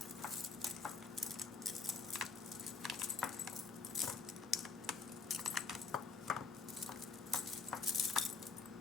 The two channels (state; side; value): quieter; right; 4.7 dB